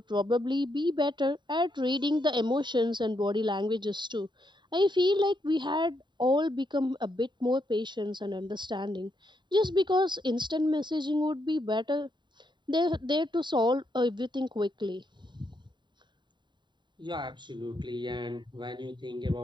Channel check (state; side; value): late; left; 0.22 ms